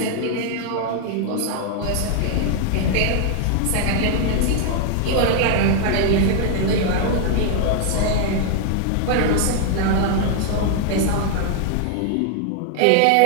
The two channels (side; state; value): both; different; correlation -0.01